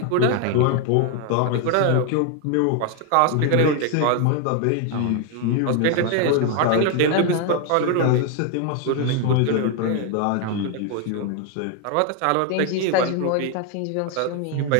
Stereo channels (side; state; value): both; different; correlation 0.01